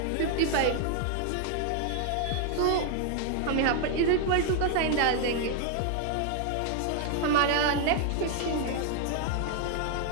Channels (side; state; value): both; different; correlation 0.00